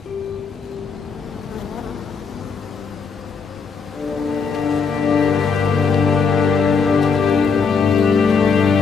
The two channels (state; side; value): quieter; right; 5.4 dB